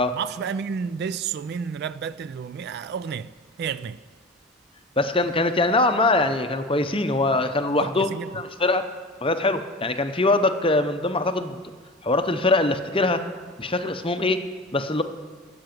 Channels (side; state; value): both; normal; correlation 0.32